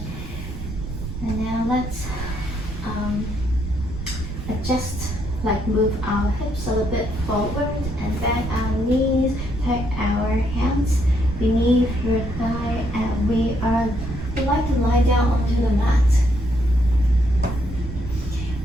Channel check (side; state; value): right; noise; rumble, 8 dB below the sound